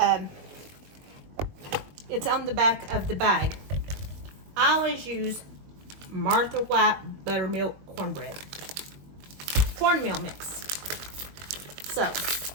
it's on the back of the bag. I always use Martha White buttermilk cornmeal mix. So,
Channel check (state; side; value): late; left; 21 ms